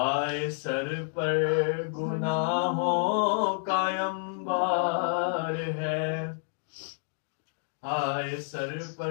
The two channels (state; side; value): silent; right; digital silence